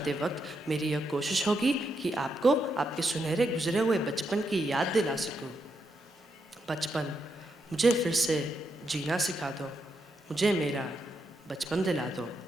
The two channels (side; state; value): both; normal; correlation 0.82